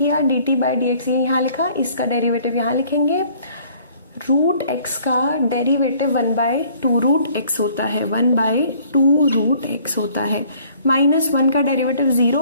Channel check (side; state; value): both; inverted; correlation -0.57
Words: d t by d x, ये यहाँ लिखा, इसका डेरिवेटिव यहाँ लिखेंगे। रूट एक्स का डेरिवेटिव 1/2 रूट एक्स होता है, 1/2 रूट एक्स होता है, -1 का डेरिवेटिव